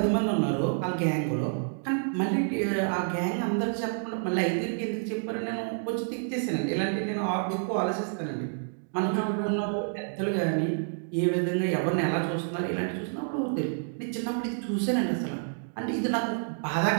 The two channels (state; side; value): silent; left; digital silence